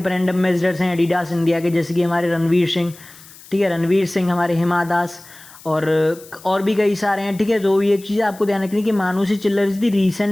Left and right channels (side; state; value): left; noise; hiss, 21 dB below the sound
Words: एम्बेसडर्स हैं एडिडास इंडिया के, जैसे कि हमारे रणवीर सिंह, ठीक है, रणवीर सिंह, हमारे हिमा दास और भी कई सारे हैं, ठीक है। तो ये चीज़ आपको ध्यान रखनी कि मानुषी चिल्लर is the